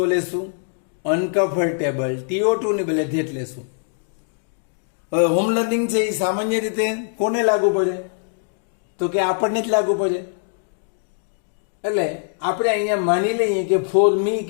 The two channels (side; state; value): right; silent; digital silence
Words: લેશું, અનકમ્ફર્ટેબલ TO2 ની બદલે ધેટ લેશું. હવે હોમ લર્નિંગ છે એ સામાન્ય રીતે કોને લાગુ પડે? તો કે આપણને જ લાગુ પડે. એટલે આપણે અહીંયા માની લઈએ કે ફોર મી